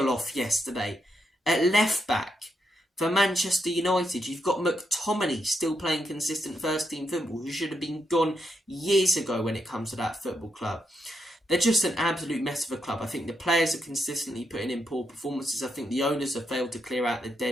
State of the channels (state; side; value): normal; both; correlation 0.81